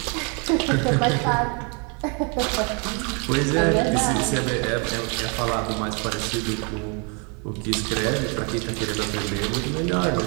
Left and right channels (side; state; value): left; quieter; 34.9 dB